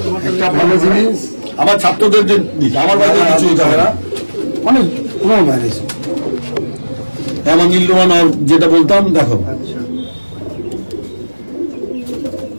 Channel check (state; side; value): inverted; both; correlation -1.00